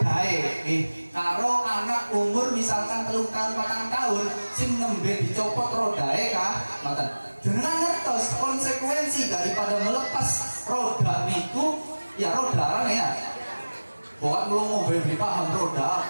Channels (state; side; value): inverted; both; correlation -1.00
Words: karo anak umur misalkan 3 tahun 4 tahun sing nembe dicopot rodae kah ngoten jenengan ngertos konsekuensi daripada melepas roda niku ya roda ya Buat melongo beli paham roda